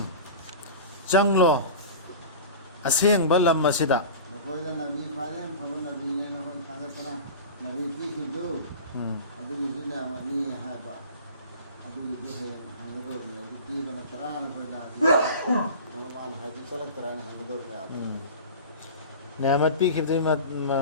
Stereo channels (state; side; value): inverted; both; correlation -0.34